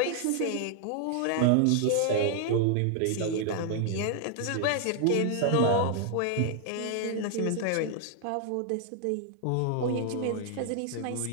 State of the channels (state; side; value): different; both; correlation 0.00